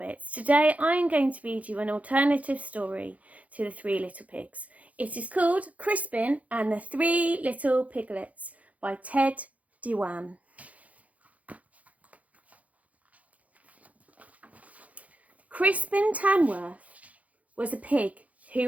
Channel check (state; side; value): late; left; 0.069 ms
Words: Today I'm going to read you an alternative story to The Three Little Pigs. It is called Crispin and the Three Little Piglets by Dewan. Crispin Tamworth was a pig